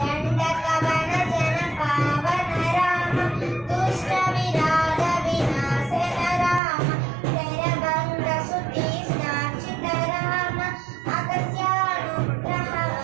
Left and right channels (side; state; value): left; drops out; at 6.6 s